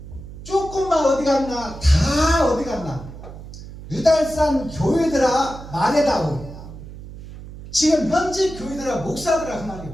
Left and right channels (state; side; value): noise; right; hum, 14 dB below the sound